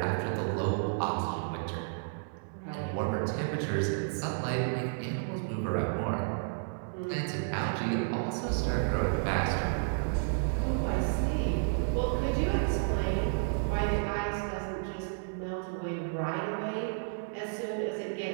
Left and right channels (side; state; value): left; silent; digital silence